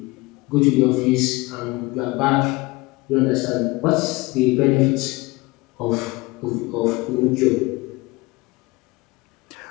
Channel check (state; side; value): quieter; right; 22.8 dB